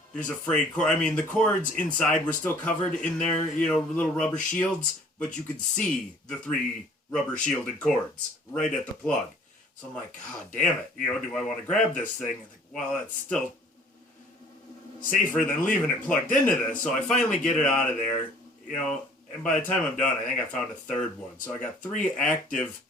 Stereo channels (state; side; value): normal; both; correlation 0.53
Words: There's a frayed cord. I mean, the cords inside were still covered in their, little rubber shields, but you could see the 3 rubber shielded cords right at the plug. So I'm like, God damn it. Do I want to grab this thing? I think, well, that's still safer than leaving it plugged into this. So I finally get it out of there, and by the time I'm done, I think I found a third one. So I got 3 active